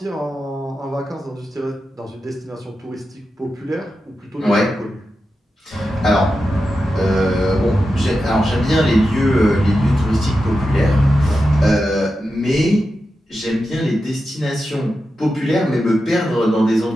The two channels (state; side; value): normal; both; correlation 0.90